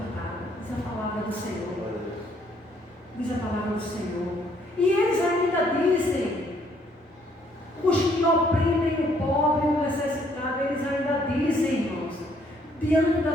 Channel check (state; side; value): normal; both; correlation 0.66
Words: Diz a palavra do Senhor. Diz a palavra do Senhor. E eles ainda dizem, os que oprimem o pobre e o necessitado, eles ainda dizem, irmãos, diante